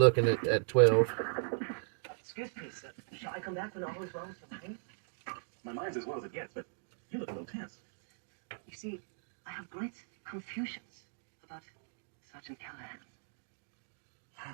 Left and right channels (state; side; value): silent; left; digital silence